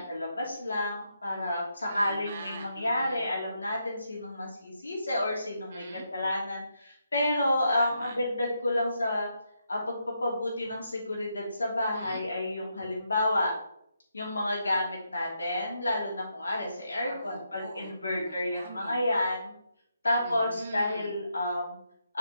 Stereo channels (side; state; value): both; inverted; correlation -0.81